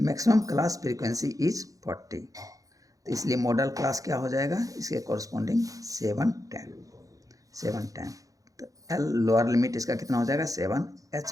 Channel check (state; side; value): late; left; 0.17 ms